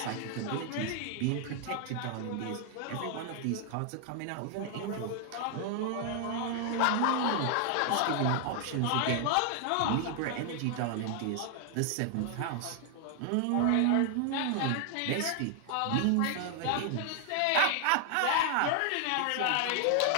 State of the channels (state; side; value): different; both; correlation 0.00